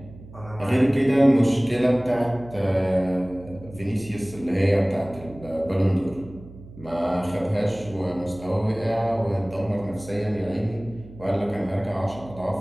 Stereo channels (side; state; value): right; noise; hum, 18 dB below the sound